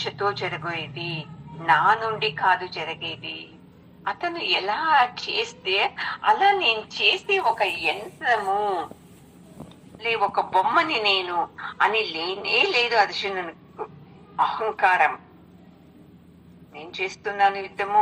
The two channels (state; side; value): identical; both; correlation 1.00